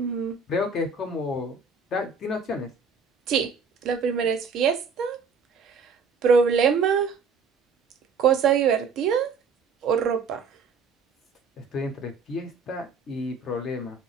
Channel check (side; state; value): left; quieter; 5.0 dB